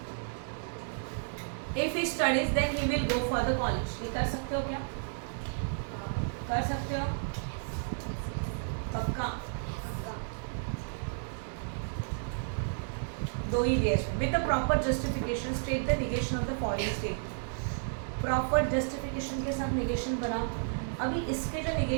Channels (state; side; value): silent; left; digital silence